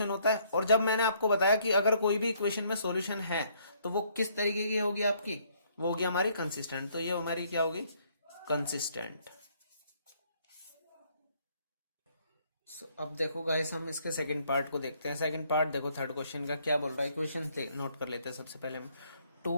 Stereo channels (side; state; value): both; inverted; correlation -0.66